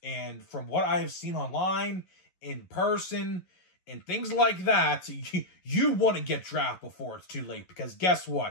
and from what I have seen online, in person, and things like that, you want to get draft before it's too late because guess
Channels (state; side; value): late; right; 11 ms